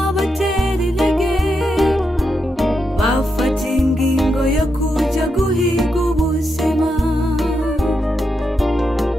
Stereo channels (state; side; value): normal; both; correlation 0.84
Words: intege, bafata ingingo yo kuja guhiga ubuzima,